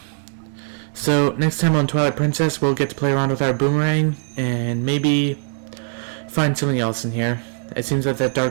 So, next time on Twilight Princess, we'll get to play around with our boomerang, and maybe find something else in here. It seems that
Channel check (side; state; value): left; silent; 65 dB below the other